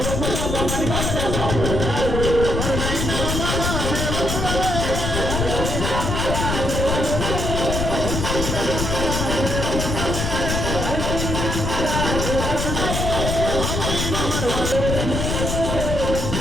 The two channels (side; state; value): left; noise; rumble, 1 dB below the sound